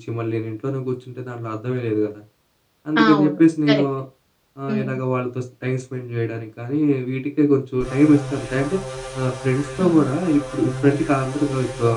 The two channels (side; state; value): both; identical; correlation 1.00